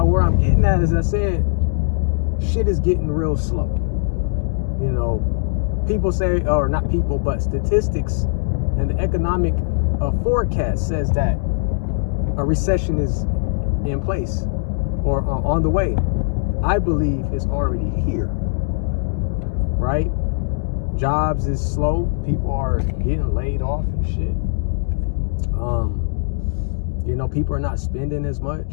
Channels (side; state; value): right; silent; digital silence